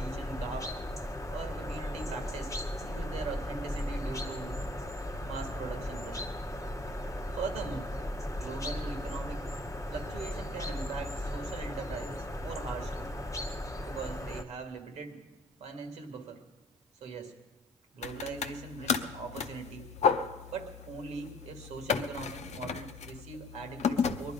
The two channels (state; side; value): normal; both; correlation 0.57